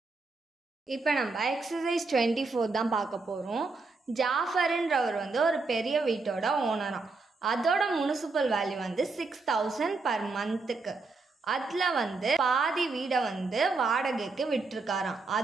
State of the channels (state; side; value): quieter; left; 3.9 dB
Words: இப்போ நம்ம எக்ஸசைஸ் 24 தான் பார்க்க போகிறோம். ஜாஃபர்ன்றவர் வந்து ஒரு பெரிய வீட்டோட ஓனராம். அதோட முனிசிபல் வேல்யூ வந்து 6,000 per monthக்கு. அதில் வந்து பாதி வீடை வந்து வாடகைக்கு விட்டுருக்காராம்.